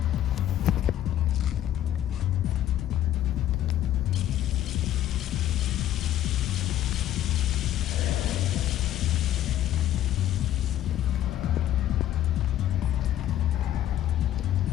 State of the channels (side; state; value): right; quieter; 12.2 dB